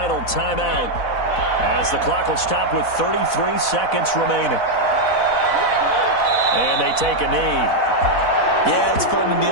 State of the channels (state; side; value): late; right; 4.1 ms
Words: timeout as the clock will stop with 33 seconds remaining. And they take a knee. Yeah, it's fun to